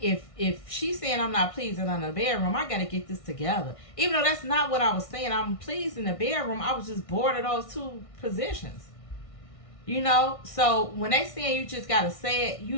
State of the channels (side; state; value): right; late; 1.6 ms